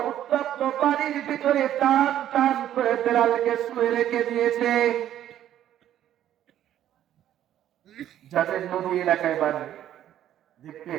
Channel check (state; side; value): quieter; left; 11.6 dB